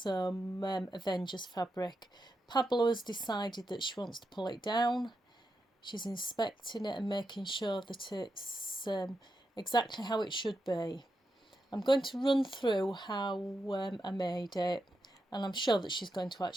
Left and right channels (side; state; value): both; normal; correlation 0.86